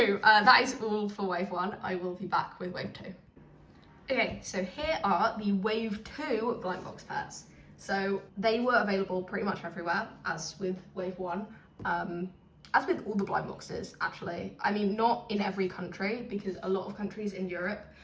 that is all for wave 1. I will be back with wave 2. Okay, so here are the wave 2 blind box pets. So they were available pretty much everywhere, as with wave 1. As with all the blind boxes, actually. I mean, not in every country, because a lot of countries in Europe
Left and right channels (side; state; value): both; identical; correlation 1.00